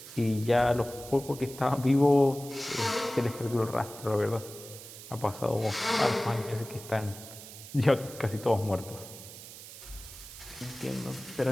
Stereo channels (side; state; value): right; noise; hiss, 15 dB below the sound